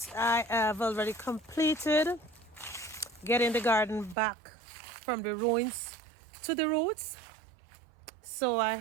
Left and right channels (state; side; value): drops out; left; at 4.2 s